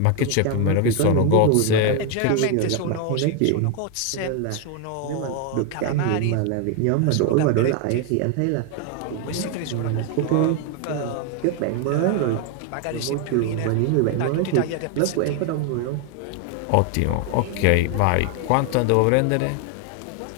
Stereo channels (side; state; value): both; different; correlation 0.01